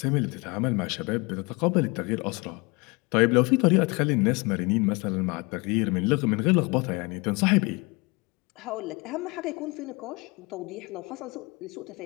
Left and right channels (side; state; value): right; quieter; 27.1 dB